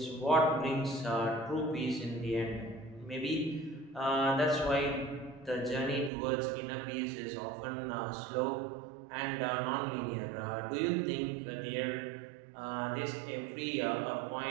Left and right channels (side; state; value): left; drops out; at 6.1 s